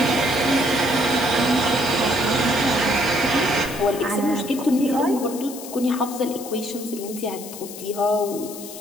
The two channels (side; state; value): left; noise; hiss, 13 dB below the sound